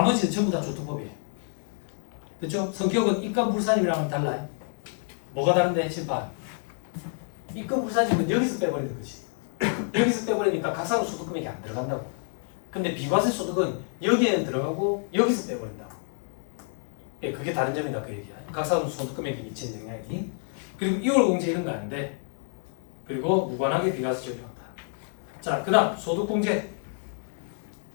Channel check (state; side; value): silent; right; 58 dB below the other